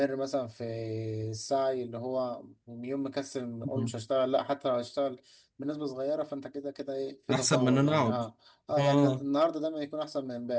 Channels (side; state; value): both; identical; correlation 1.00